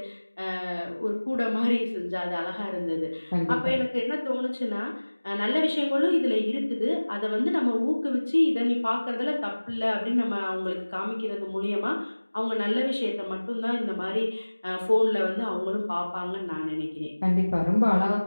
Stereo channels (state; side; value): inverted; both; correlation -1.00